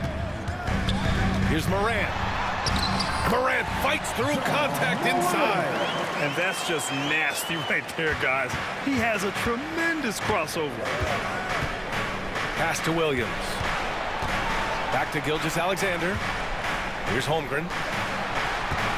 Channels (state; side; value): identical; both; correlation 1.00